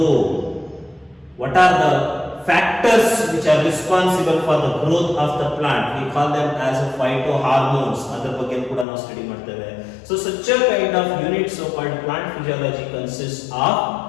what are the factors which are responsible for the growth of the plant, we call them as a phytohormones, ಅದರ ಬಗ್ಗೆ ಕೂಡ ನಾವು ಸ್ಟಡಿ ಮಾಡ್ತೇವೆ. So such a kind of unit, so called plant physiology, consists of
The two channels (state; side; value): drops out; right; at 8.8 s